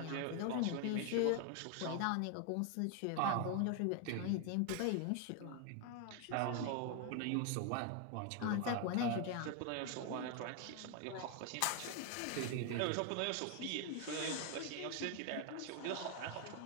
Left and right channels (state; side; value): different; both; correlation 0.01